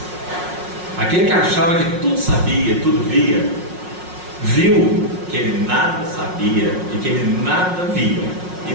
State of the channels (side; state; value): left; late; 5.5 ms